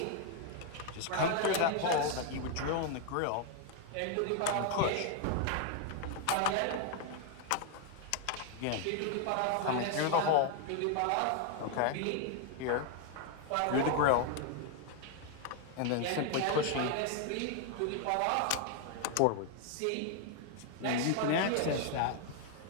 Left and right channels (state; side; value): different; both; correlation 0.00